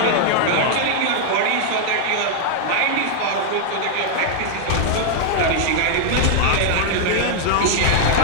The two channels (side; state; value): both; different; correlation 0.00